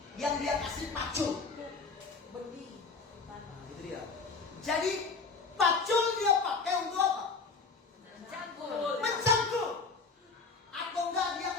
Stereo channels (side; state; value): right; quieter; 4.5 dB